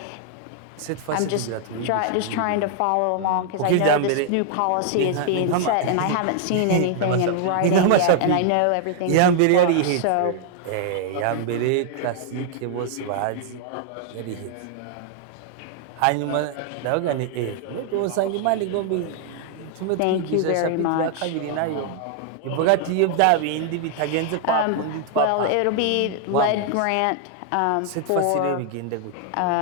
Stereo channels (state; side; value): different; both; correlation 0.00